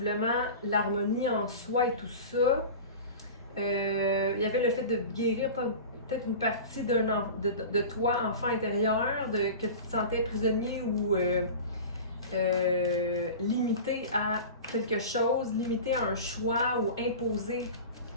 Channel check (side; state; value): both; inverted; correlation -0.34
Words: l'harmonie en soi et tout ça. Il y avait le fait de guérir peut-être une partie de toi, enfant intérieur, que tu te sentais prisonnier ou limité à quelque chose, limité à un choix ou imposé.